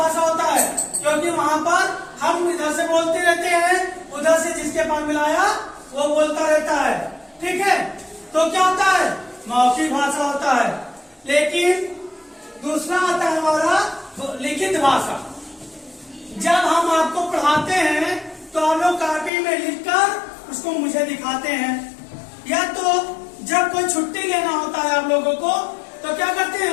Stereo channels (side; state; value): right; drops out; at 19.3 s